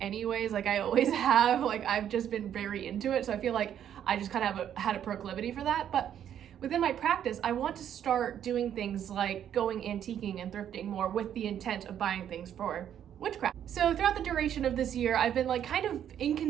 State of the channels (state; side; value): quieter; left; 9.8 dB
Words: Like I always have, like I've just been very into it. So I feel like I just kind of had a proclivity for that. But within my practice, I want to start doing things like going antiquing and thrifting more with the intent of buying things for witchcraft. So throughout the duration of this year, I've been like kind of